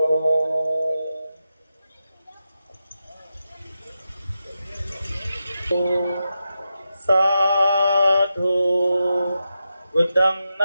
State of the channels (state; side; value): inverted; both; correlation -0.89